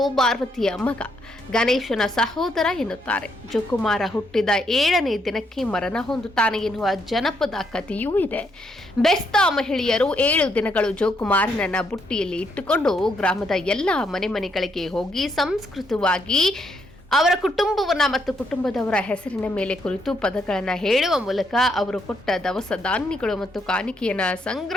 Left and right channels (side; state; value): both; normal; correlation 0.75